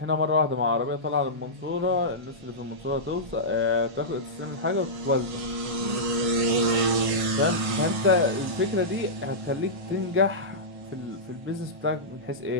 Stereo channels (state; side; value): late; left; 1.5 ms